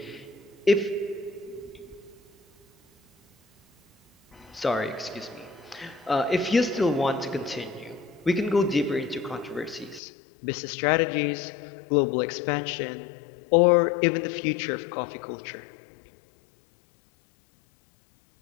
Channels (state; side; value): drops out; right; at 10.0 s